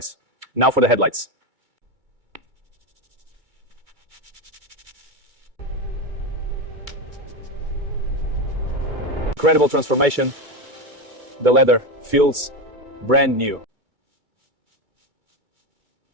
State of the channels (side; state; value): left; late; 2.3 ms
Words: Now for the headlights. Incredible transformation. The leather feels brand new.